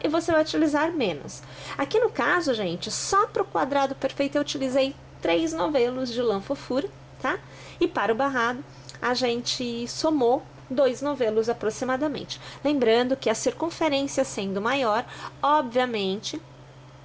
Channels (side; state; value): both; identical; correlation 1.00